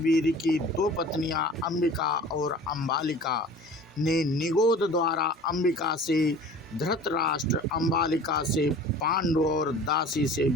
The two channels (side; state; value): both; normal; correlation 0.42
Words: की 2 पत्नियां अंबिका और अंबालिका ने निगोद द्वारा अंबिका से धृतराष्ट्र, अंबालिका से पांडु और दासी से